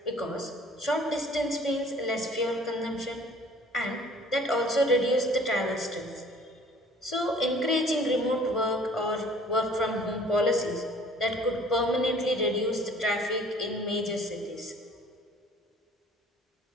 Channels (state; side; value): normal; both; correlation 0.52